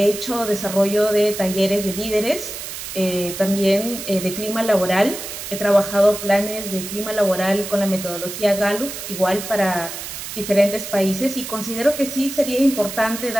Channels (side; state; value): right; noise; hiss, 8 dB below the sound